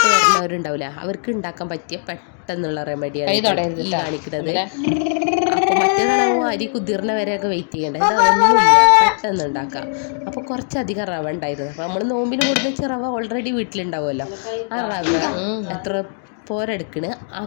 വരുന്നവരുണ്ടാവില്ല, അവർക്ക് ഉണ്ടാക്കാൻ പറ്റിയ പെട്ടെന്നുള്ള റെമഡിയാണ് ഈ കാണിക്കുന്നത്. അപ്പോൾ മറ്റേതാണെങ്കിൽ അരി കുതിർന്ന വരെയൊക്കെ വെയിറ്റ് ചെയ്യേണ്ട, ഇത് അതൊന്നുമില്ല, പെട്ടെന്ന് ഉണ്ടാക്കാം. അപ്പോൾ കുറച്ചധികം റവ ഉണ്ടായിരുന്നു. അപ്പോൾ നമ്മൾ നോമ്പിന് കൊടുത്ത റവ ഓൾറെഡി വീട്ടിലുണ്ടാവുമല്ലോ. ആ റവ എത്ര പോരെടുക്കണ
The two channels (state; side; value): silent; right; 64 dB below the other